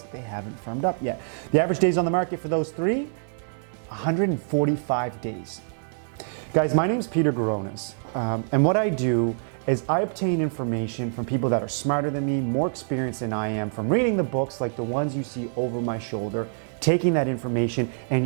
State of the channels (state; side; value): silent; left; 61 dB below the other